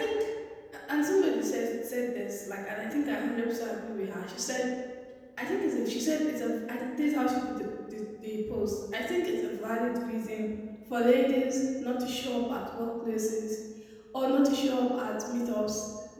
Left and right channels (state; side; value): identical; both; correlation 1.00